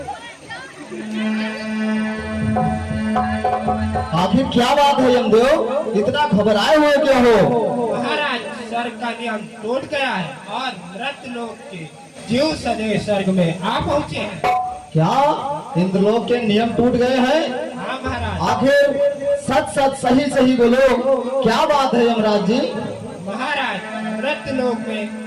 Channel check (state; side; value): identical; both; correlation 1.00